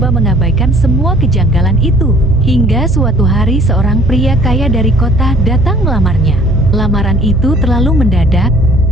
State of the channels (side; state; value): both; normal; correlation 0.54